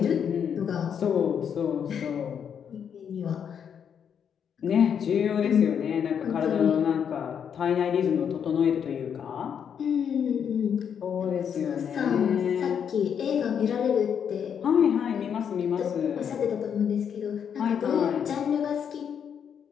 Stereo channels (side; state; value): right; quieter; 7.9 dB